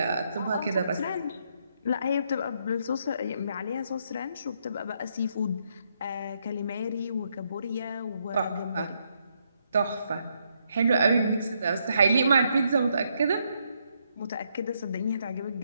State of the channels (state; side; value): inverted; both; correlation -0.76